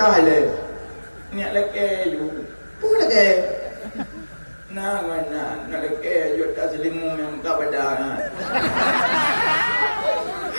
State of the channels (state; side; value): inverted; both; correlation -1.00